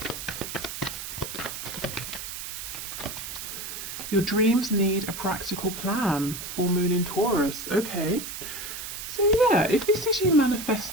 your dreams need a practical plan. Full moon in Taurus. Okay. So yeah, if this is you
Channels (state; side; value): noise; right; hiss, 8 dB below the sound